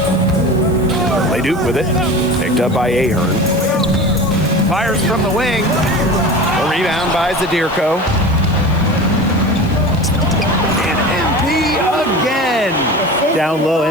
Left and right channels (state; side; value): noise; right; hiss, 23 dB below the sound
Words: Leduc with it. Picked up by Ahern. Fires from the wing. A rebound by Zadirko. And MP again. Down low,